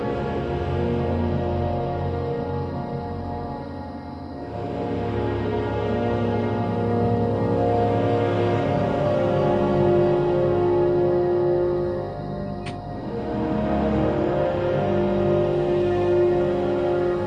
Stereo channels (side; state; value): both; identical; correlation 1.00